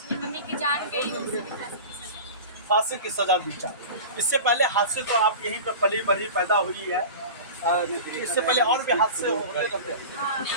मम्मी की जान गई हो, फांसी की सजा दी जाए। इससे पहले हादसे तो आप यहीं पर पली बड़ी पैदा हुई है, इससे पहले और भी हादसे होते रहते हैं।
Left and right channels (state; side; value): inverted; both; correlation -0.33